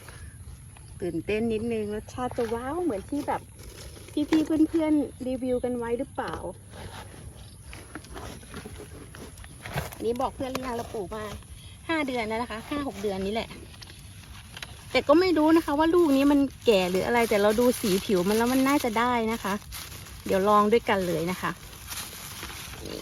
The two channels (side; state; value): both; identical; correlation 1.00